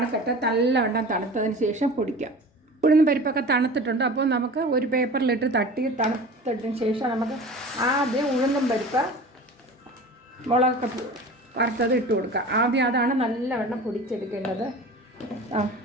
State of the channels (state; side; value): normal; both; correlation 0.37